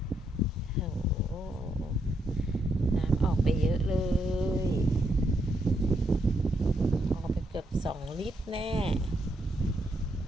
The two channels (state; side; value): normal; both; correlation 0.78